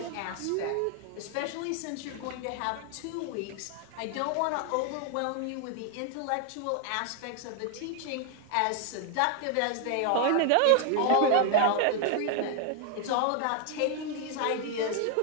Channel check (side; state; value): both; different; correlation 0.00